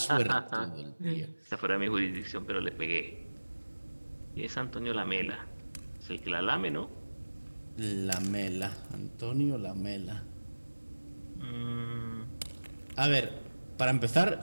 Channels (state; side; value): inverted; both; correlation -1.00